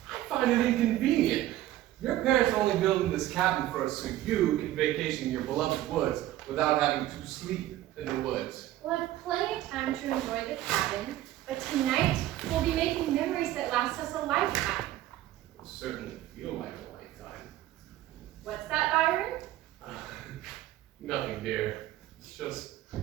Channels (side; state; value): left; quieter; 14.4 dB